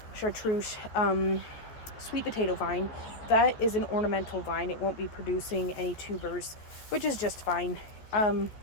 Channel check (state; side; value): late; right; 14 ms